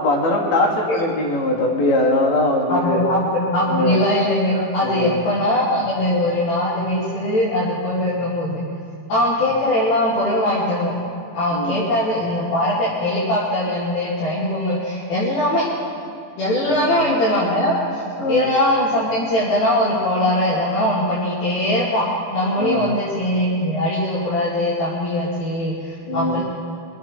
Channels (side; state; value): right; late; 18 ms